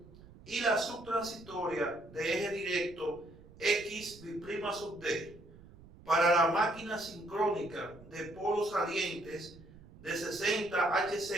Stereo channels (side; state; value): right; noise; rumble, 21 dB below the sound